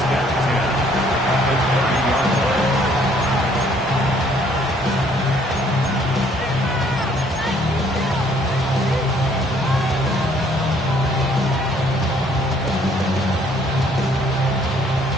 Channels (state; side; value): normal; both; correlation 0.62